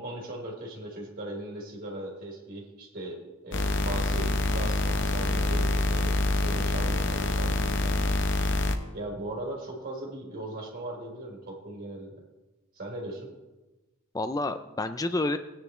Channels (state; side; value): normal; both; correlation 0.66